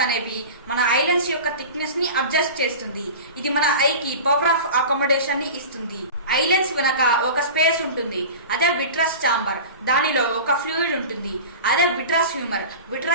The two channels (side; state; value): both; inverted; correlation -0.34